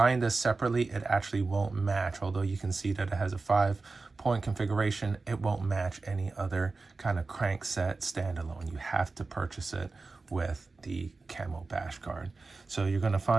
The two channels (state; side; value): quieter; left; 3.8 dB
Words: this separately, it actually won't match. Although you can see that it has a 5-point configuration, it won't match any other kind of crank set standalone. You have to purchase it with the camo bash guard. So you're going to